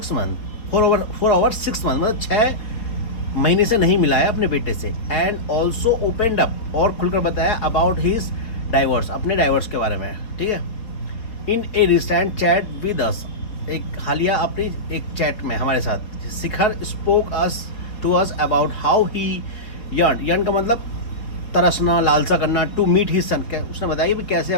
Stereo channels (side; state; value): right; late; 4.4 ms